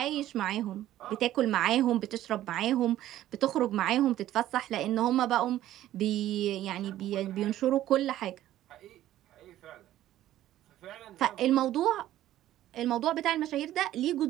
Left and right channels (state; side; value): quieter; left; 13.5 dB